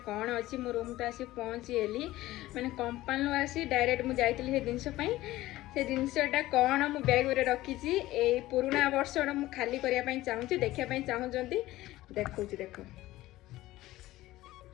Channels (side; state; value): right; quieter; 16.7 dB